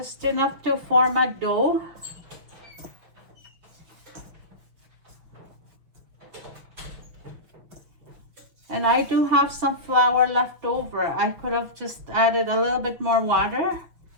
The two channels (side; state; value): left; late; 6.0 ms